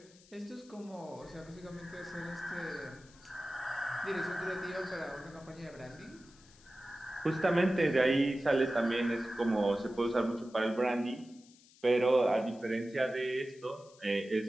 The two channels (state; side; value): noise; left; hiss, 26 dB below the sound